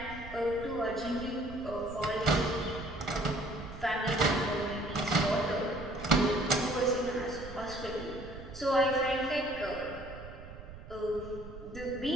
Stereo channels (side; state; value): right; noise; rumble, 14 dB below the sound